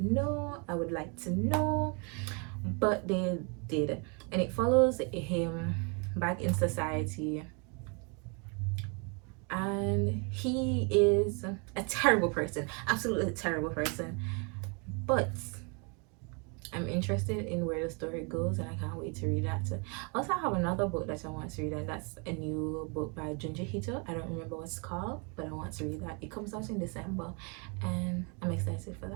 know. I would like to know, but they did, and it follows him back in society, and he is a terrible person, absolutely terrible person, but I'm interested in where the story goes, and I can't wait to read that. Also, I have another book that I want to read, and that's a new book by Junji Hito. I don't remember what it's called, but I want to read that. It comes out in December, and I'm excited for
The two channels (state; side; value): quieter; left; 34.2 dB